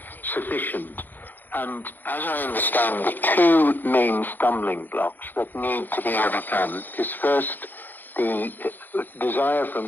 sufficient. And as I understand, the two main stumbling blocks that need to be overcome is first the desire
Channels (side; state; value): right; late; 0.088 ms